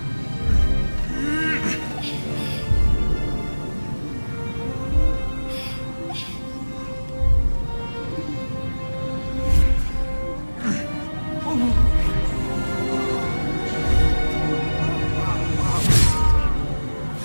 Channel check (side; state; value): both; inverted; correlation -1.00